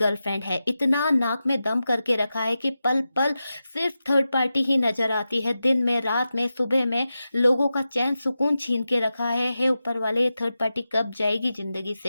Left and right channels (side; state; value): both; inverted; correlation -0.92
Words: है। इतना नाक में दम करके रखा है कि पल पल सिर्फ थर्ड पार्टी ही नजर आती है, दिन में, रात में, सुबह में, लोगों का चैन सुकून छीन के रखा है। हे ऊपर वाले, ये थर्ड पार्टी कब जाएगी जिंदगी